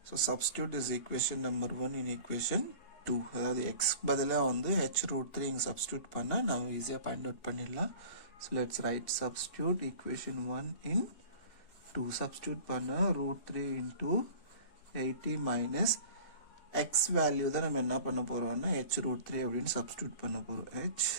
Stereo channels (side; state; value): right; late; 2.8 ms